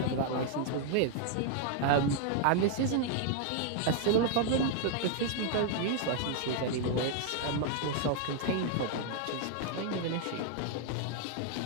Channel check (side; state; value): both; different; correlation 0.00